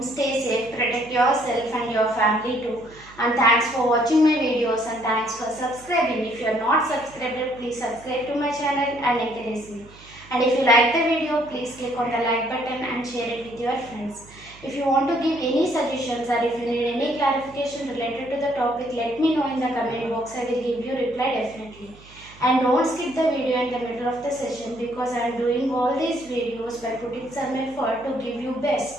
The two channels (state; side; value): noise; right; hum, 23 dB below the sound